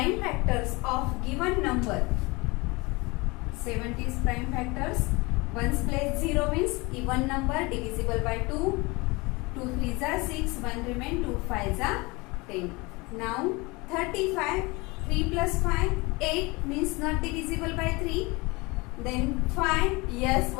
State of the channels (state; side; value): quieter; right; 25.1 dB